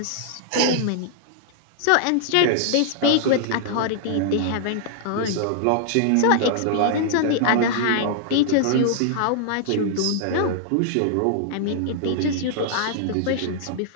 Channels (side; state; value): both; different; correlation -0.01